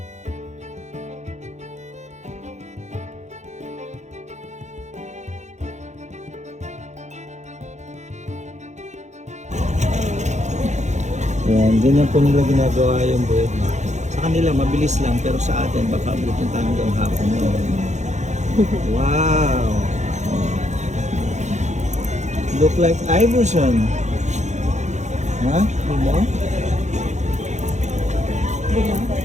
Yan, ganyan po nila ginagawa yung bread na. Sa kanila mabilis lang pero sa atin baka abutin tayo hanggang hapon yun. Wow! Look like Iverson. Ha? Diba?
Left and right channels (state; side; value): late; left; 0.34 ms